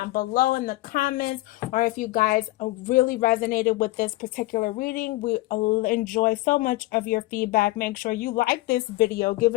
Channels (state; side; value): quieter; right; 19.2 dB